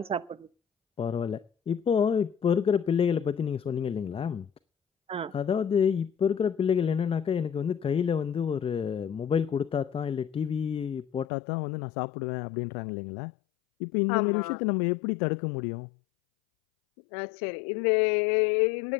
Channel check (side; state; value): right; drops out; at 11.2 s